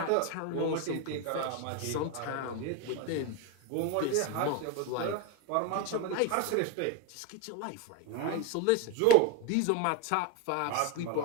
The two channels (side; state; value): both; different; correlation 0.02